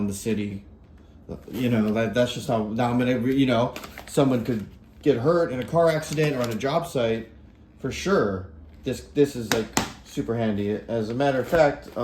the city. That's just how. Now I'm going to, someone could get hurt in a car accident or on a job site, for sure, this is like super handy. As a matter of fact,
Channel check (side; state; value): both; identical; correlation 1.00